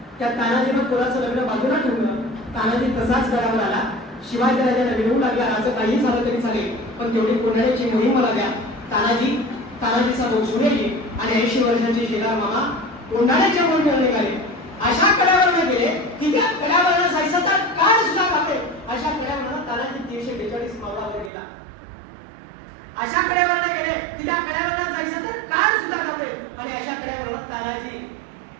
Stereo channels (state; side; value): drops out; left; at 21.3 s